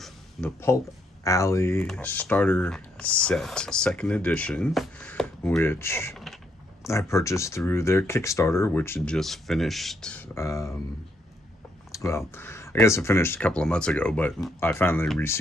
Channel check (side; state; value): both; normal; correlation 0.74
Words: the Pulp Alley Starter Set, second edition, which I purchased through their Kickstarter, which had just finished. Well, I guess it finished a couple of months ago, but I finally